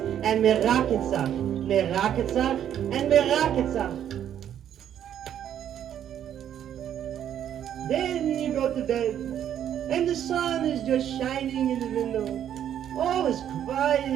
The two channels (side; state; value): left; quieter; 10.1 dB